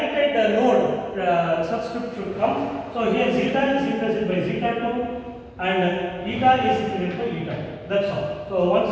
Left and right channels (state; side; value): identical; both; correlation 1.00